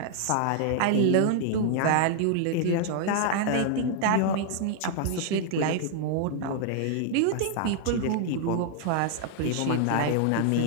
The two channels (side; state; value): both; different; correlation 0.00